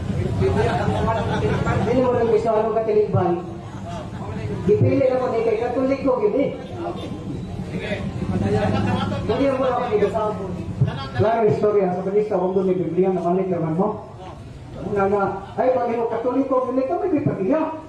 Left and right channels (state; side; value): identical; both; correlation 1.00